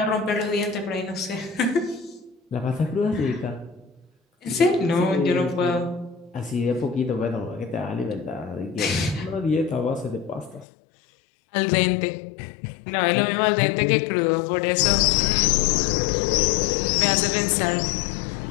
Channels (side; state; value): right; drops out; at 10.7 s